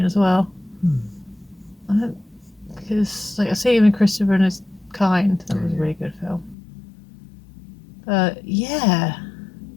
as well. Because I see him in Christopher and His Kind. That was a really good film. Yeah.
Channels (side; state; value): right; drops out; at 6.6 s